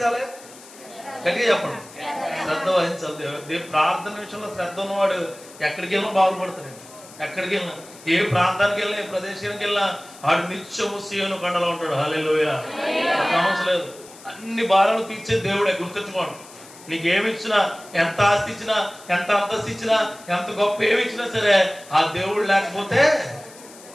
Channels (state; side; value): noise; left; hiss, 20 dB below the sound